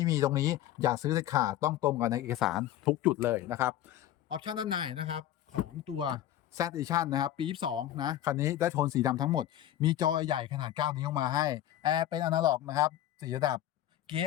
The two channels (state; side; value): quieter; right; 12.4 dB